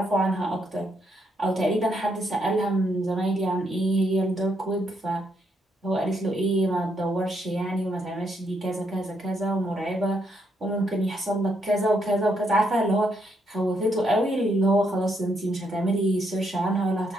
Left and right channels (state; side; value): normal; both; correlation 0.76